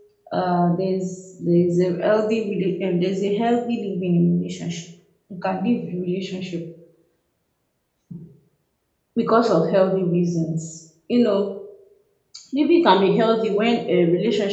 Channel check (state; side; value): identical; both; correlation 1.00